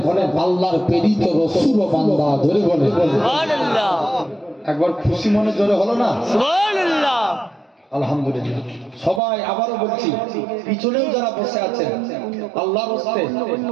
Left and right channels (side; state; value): left; drops out; at 9.2 s